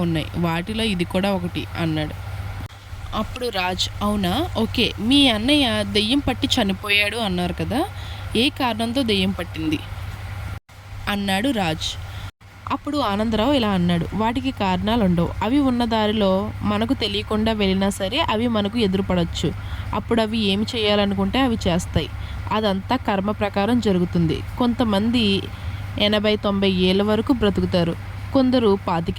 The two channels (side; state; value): both; identical; correlation 1.00